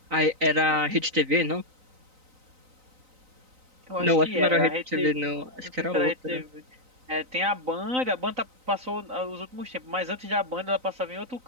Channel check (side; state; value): left; late; 3.9 ms